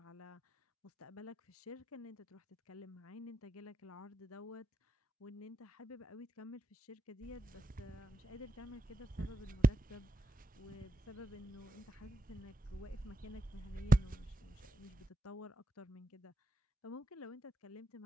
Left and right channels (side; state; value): both; normal; correlation 0.84